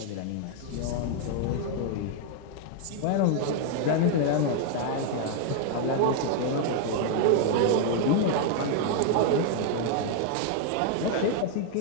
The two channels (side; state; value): both; different; correlation 0.00